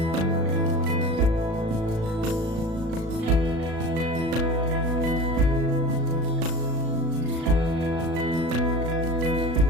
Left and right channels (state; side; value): late; left; 36 ms